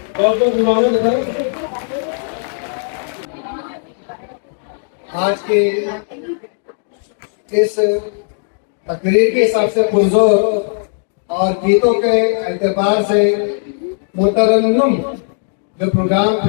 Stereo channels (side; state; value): right; silent; digital silence